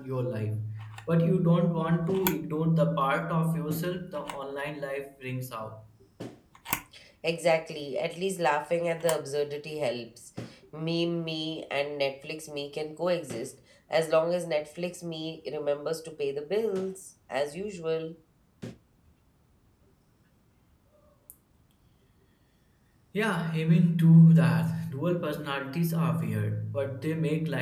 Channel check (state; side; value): identical; both; correlation 1.00